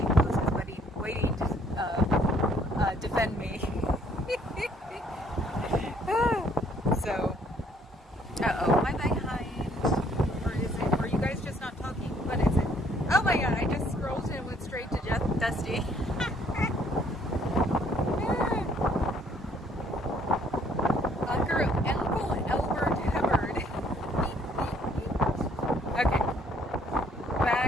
poses, waiting to defend me. So, am I behind? Or is it? Are you guys just not talking? What is it? Oh my God! I just scrolled and went straight to Dusty. Uncle Albert Hubbard. Okay,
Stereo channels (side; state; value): both; normal; correlation 0.63